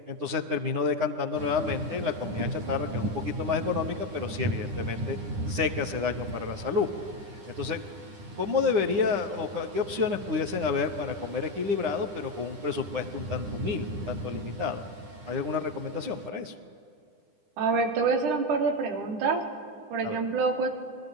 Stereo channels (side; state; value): left; late; 9.9 ms